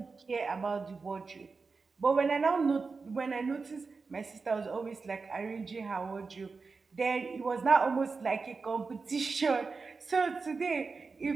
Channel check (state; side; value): quieter; left; 4.5 dB